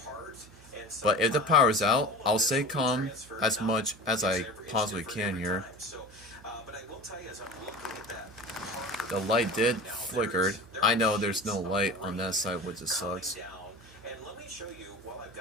But if the power's out, I'll stay calm as much as I possibly can here. The light did flickered. I know there's no light on that side, which just sucks. And let me show you while I've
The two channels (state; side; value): noise; right; hum, 22 dB below the sound